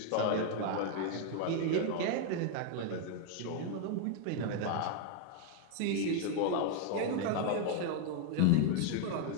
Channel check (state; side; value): different; both; correlation 0.00